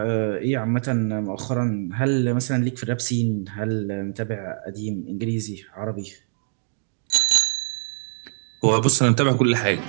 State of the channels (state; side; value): silent; left; digital silence